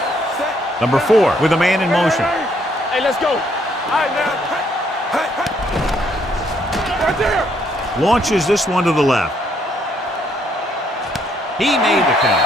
Number 4 with a man in motion. Hey, let's go. All right, now. Right there. Launches this one to the left. He made the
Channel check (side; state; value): both; normal; correlation 0.70